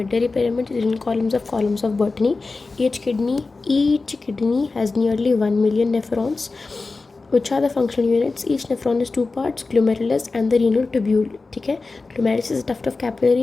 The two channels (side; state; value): right; quieter; 3.8 dB